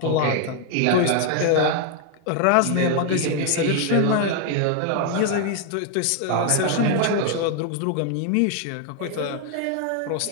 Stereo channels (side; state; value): both; different; correlation 0.00